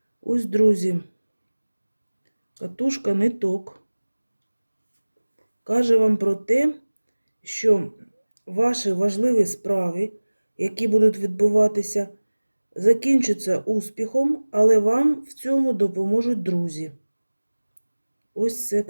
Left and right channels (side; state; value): both; inverted; correlation -1.00